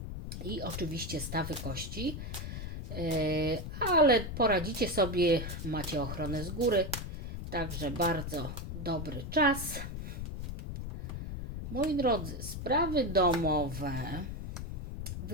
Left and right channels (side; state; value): left; noise; rumble, 6 dB below the sound